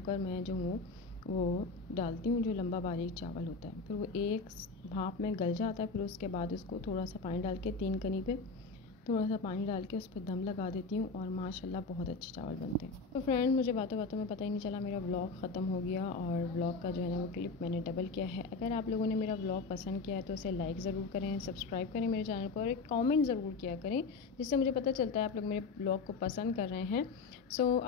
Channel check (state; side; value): quieter; right; 4.2 dB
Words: मैं जो हूँ वो डालती हूँ, जो लंबा बारीक चावल होता है। फिर वो एक भाप में गल जाता है। फिर उसके बाद उसको थोड़ा सा पानी डाल के 3 कनी पे थोड़ा सा पानी डाल के उस पर दम लगा देती हूँ और माशाल्लाह बहुत अच्छे चावल बनते हैं। तो फ्रेंड, मुझे बातों बातों में पता ही नहीं चला मेरा व्लॉग ख़त्म हो गया और व्लॉग का जो है ना वो क्लिप मैंने डबल किया है। अगर आप लोगों ने मेरा व्लॉग पसंद किया है तो उसे लाइक ज़रूर करें, सब्सक्राइब करें मेरे चैनल को और एक कॉमेंट ज़रूर किया करें, जिससे मुझे पता चलता है आप लोग मेरे व्लॉग को पसंद कर रहे हैं। सो